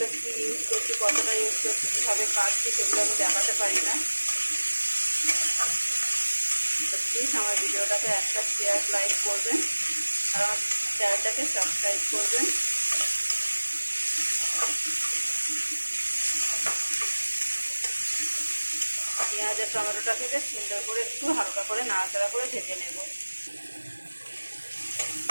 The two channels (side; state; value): both; inverted; correlation -1.00